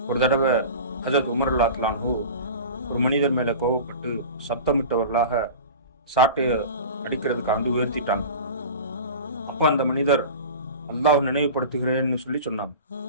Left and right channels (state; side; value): inverted; both; correlation -0.34